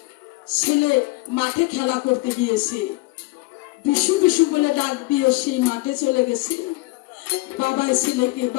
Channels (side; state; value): right; quieter; 22.2 dB